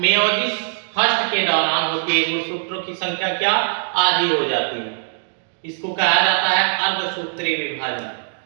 फर्स्ट के दौरान होती है। गुणसूत्रों की संख्या क्या आधी हो जाती है। इसको कहा जाता है अर्धसूत्रीय विभाजन।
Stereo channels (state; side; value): silent; left; digital silence